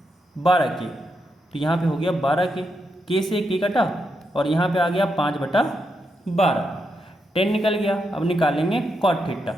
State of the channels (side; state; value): both; normal; correlation 0.83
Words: 12k, तो यहाँ पे हो गया 12k, k से k कटा और यहाँ पे आ गया 5/12, 10 निकल गया। अब निकालेंगे कॉट थीटा।